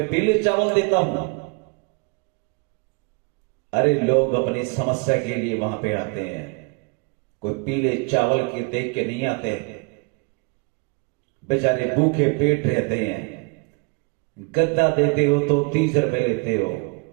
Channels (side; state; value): left; quieter; 31.3 dB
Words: पीले चावल देता हूं। अरे लोग अपनी समस्या के लिए वहां पे आते हैं, कोई पीले चावल के देख के नहीं आते। बेचारे भूखे पेट रहते हैं। गद्दा देते हो तो 30 रुपए लेते हो,